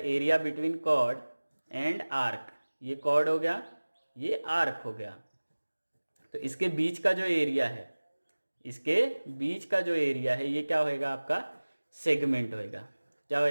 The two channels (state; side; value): inverted; both; correlation -1.00